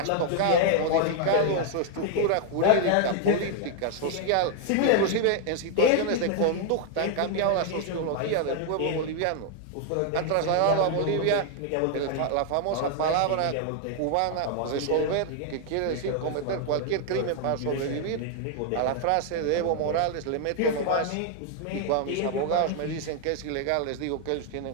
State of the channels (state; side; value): different; both; correlation 0.00